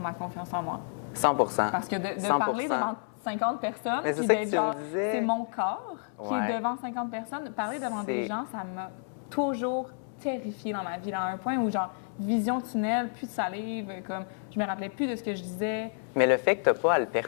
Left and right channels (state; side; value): silent; right; 58 dB below the other